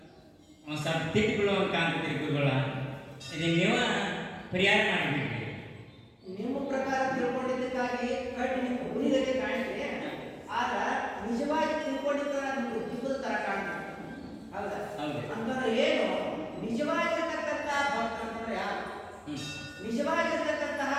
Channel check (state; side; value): identical; both; correlation 1.00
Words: ತಿಟ್ಟಿಗಳು ಅಂತ ಕಾಣ್ತೈತಿ ಗುರುಗಳ. ಇದು ನೀವು ಪರಿಹಾರ ಮಾಡಿಬಿಡ್ರಿ. ನಿಮ್ಮ ಪ್ರಕಾರ ತಿಳ್ಕೊಂಡಿದ್ದಕ್ಕಾಗಿ ಕಟ್ಟಿ ನಿಮ್ಮ ಹುಲಿಗತೆ ಕಾಣ್ತೀರಿ. ಆದ್ರ ನಿಜವಾಗಿ ತಿಳ್ಕೊಂಡಿದ್ದ ನಿಮ್ಗೆ ದಿಬ್ಬದ ತರ ಕಾಣ್ತೀರಿ. ಹೌದಾ? ಹೌದು. ಅಂತಂದ್ರೆ ಏನು ನಿಜವಾಗಿರ್ತಕ್ಕಂತಹ ಭಕ್ತ ಅಂತಂದ್ರೆ ಯಾರು? ನಿಜವಾಗಿರ್ತಕ್ಕಂತಹ